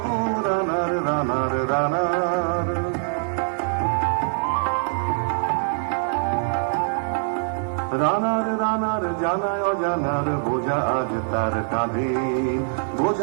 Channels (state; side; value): silent; left; 61 dB below the other